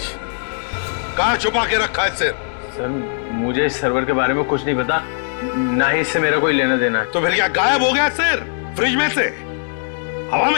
कहां छुपा के रखा है सिर? सर मुझे इस सर्वर के बारे में कुछ नहीं पता, ना ही इससे मेरा कोई लेना देना है। तो फिर क्या गायब हो गया सिर फ्रिज में से? हवा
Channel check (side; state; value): right; silent; digital silence